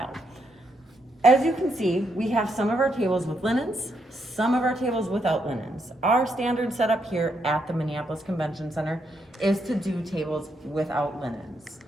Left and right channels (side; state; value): both; normal; correlation 0.78